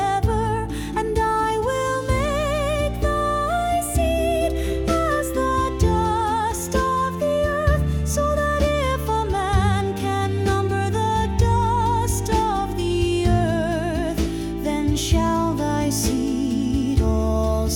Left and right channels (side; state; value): both; identical; correlation 1.00